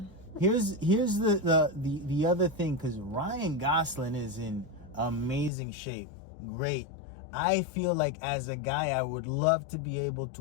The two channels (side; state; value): right; drops out; at 5.5 s